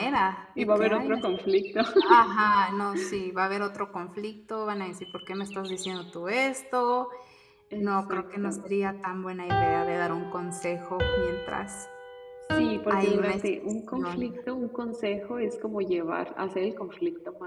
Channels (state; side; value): identical; both; correlation 1.00